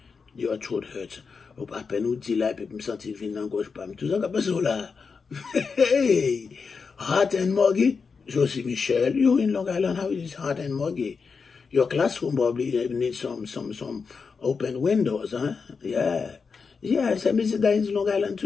your throat hurts. Ou pas peine ou dit là puis me sentir vinn engage pas tout ça pas ça là. Hey, hot and muggy. Josie Michel, you in Long Island, how is it hot and muggy? Your classroom probably needs some open windows, huh? Yeah. Yes, I visit that in Long Island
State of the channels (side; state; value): right; quieter; 5.2 dB